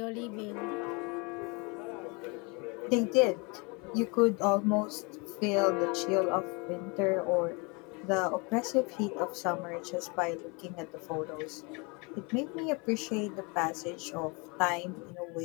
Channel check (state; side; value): quieter; right; 29.9 dB